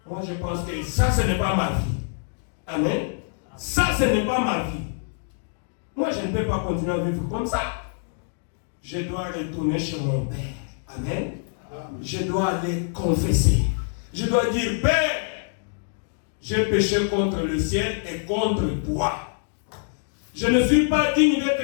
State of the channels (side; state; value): right; silent; digital silence